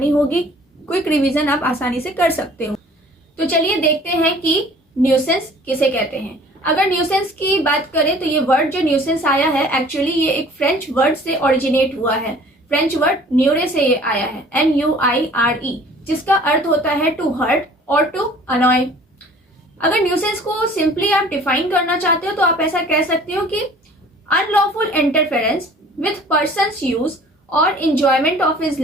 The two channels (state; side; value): normal; both; correlation 0.50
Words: होगी। क्विक रिविजन आप आसानी से कर सकते हो। तो चलिए देखते हैं कि न्यूसेंस किसे कहते हैं। अगर न्यूसेंस की बात करें तो ये वर्ड जो न्यूसेंस आया है, एक्चुअली ये एक फ्रेंच वर्ड से ओरिजिनेट हुआ है। फ्रेंच वर्ड न्यूरे से ये आया है, NUIRE, जिसका अर्थ होता है टू हर्ट और टू अनॉय। अगर न्यूसेंस को सिंपली आप डिफाइन करना चाहते हो तो आप ऐसा कह सकते हो कि unlawful interference with persons use और इंजॉयमेंट ऑफ हिज